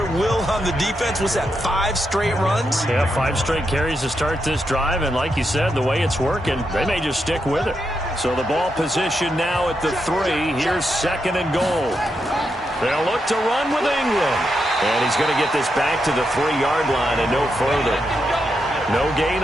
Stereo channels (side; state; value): both; normal; correlation 0.84